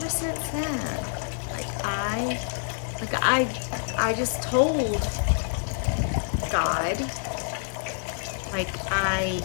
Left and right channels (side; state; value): right; silent; 60 dB below the other